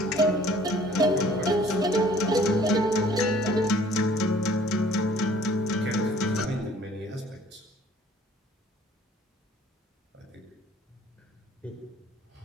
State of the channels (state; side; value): normal; both; correlation 0.55